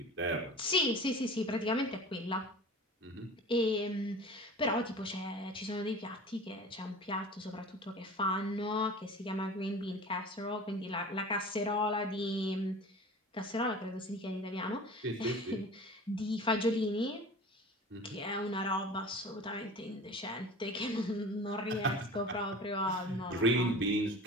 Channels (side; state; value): both; normal; correlation 0.39